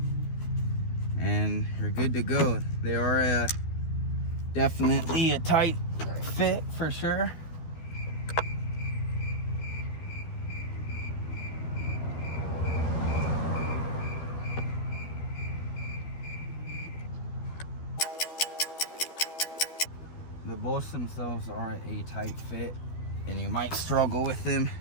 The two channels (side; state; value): right; late; 12 ms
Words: and you're good to go. They are definitely a tight fit for sure. The bolts themselves are a tight fit, and you might struggle with them,